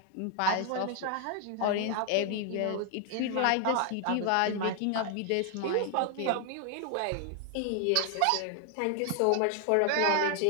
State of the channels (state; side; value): different; both; correlation 0.00